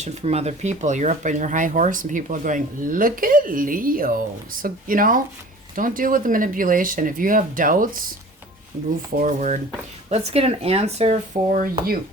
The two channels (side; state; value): both; normal; correlation 0.43